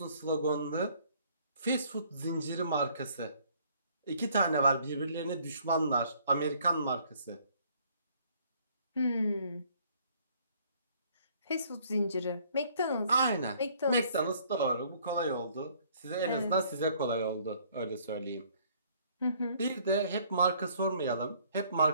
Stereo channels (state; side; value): inverted; both; correlation -0.61